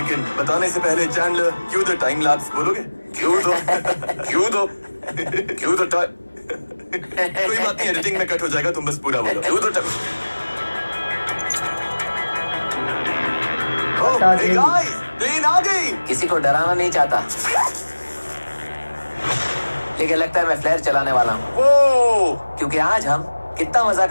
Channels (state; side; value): inverted; both; correlation -1.00